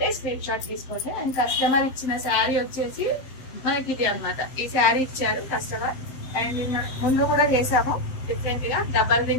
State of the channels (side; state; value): right; late; 7.8 ms